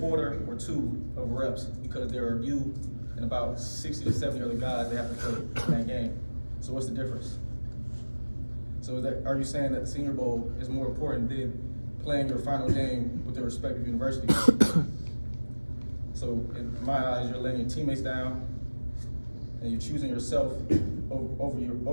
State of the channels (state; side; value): inverted; both; correlation -1.00